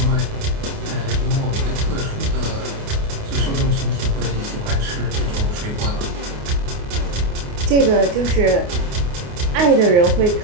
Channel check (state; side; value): late; left; 29 ms